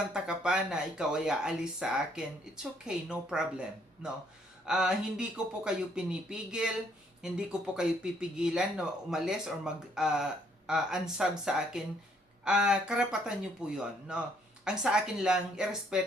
ka pa na ikaw ay aalis sa akin. It's okay, no problem. No? Hindi ko po kayo pinipigil, hindi ko po kayo pipigilan na umalis or unsub sa akin. Karapatan nyo po yon, no? Ang sa akin lang,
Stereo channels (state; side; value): normal; both; correlation 0.67